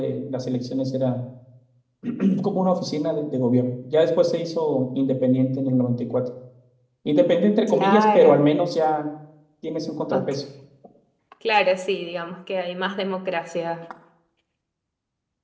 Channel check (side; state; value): both; identical; correlation 1.00